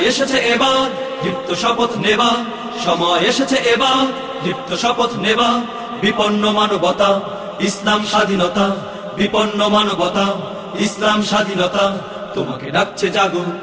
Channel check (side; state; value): both; identical; correlation 1.00